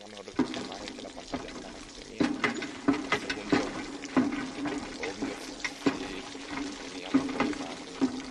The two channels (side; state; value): both; identical; correlation 1.00